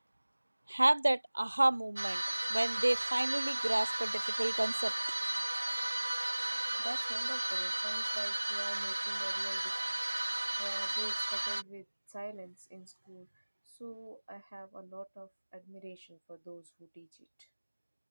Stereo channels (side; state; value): both; inverted; correlation -1.00